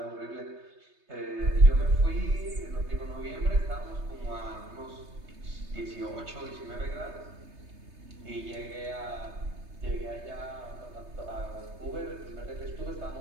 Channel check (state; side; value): late; left; 3.3 ms